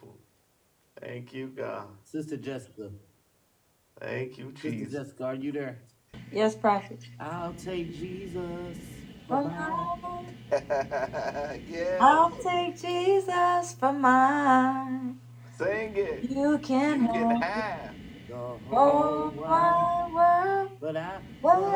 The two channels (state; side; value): identical; both; correlation 1.00